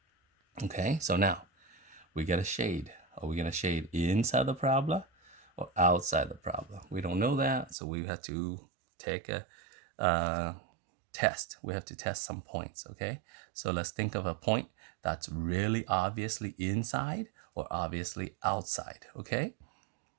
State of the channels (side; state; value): left; drops out; at 7.8 s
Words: Okay, so now we get a shade. Are we going to shade inside the parabola or outside the parabola? We don't know that, so we have to take a test. We have to test some points, okay? So let's think of a point that's really obviously inside or obviously outside, okay?